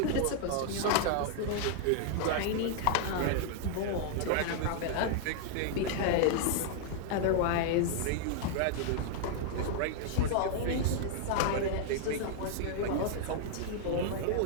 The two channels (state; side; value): different; both; correlation -0.01